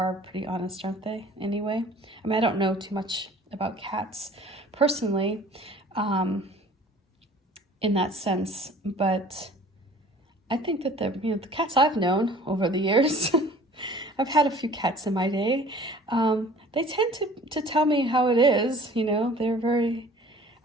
pretty honest, aren't they? Anyway, I don't know too much about cats personally, in that sense, but I think that the cats I've known over the years, I've had a few cats in my day. They tend to tell me how it is. They're very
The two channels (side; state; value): both; normal; correlation 0.49